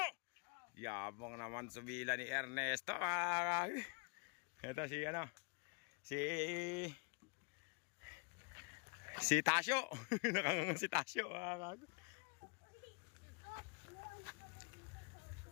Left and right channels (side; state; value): right; quieter; 34.6 dB